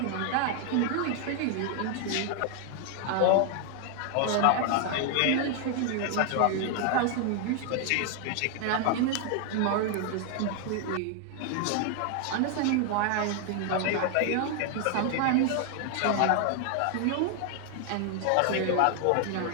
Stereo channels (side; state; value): both; different; correlation 0.00